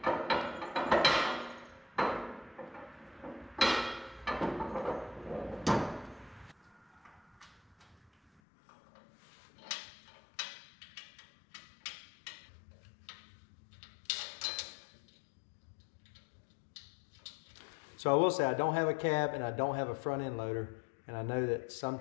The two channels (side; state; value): right; drops out; at 8.4 s